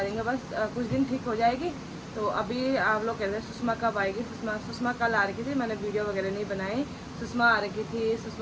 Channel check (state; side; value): identical; both; correlation 1.00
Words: देंगे, बस कुछ दिन ठीक हो जाएगी। तो अभी आप लोग कहते हैं सुषमा कब आएगी। सुषमा कल आ रखी थी, मैंने वीडियो वगैरह नहीं बनाई। सुषमा आ रखी थी,